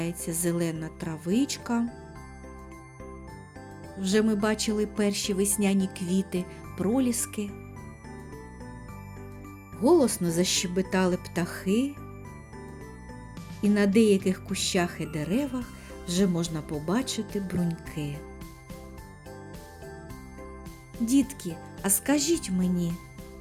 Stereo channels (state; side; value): identical; both; correlation 1.00